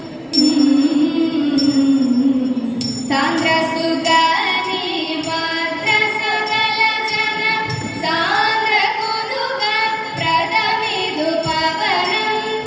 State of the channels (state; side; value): identical; both; correlation 1.00